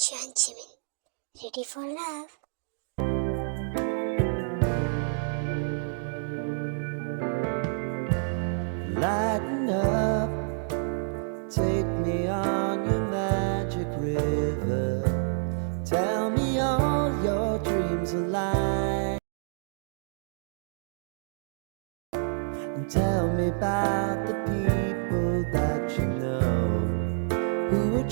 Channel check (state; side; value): silent; left; digital silence